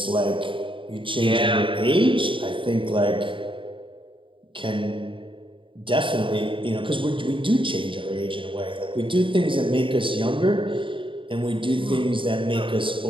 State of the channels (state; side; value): late; left; 0.25 ms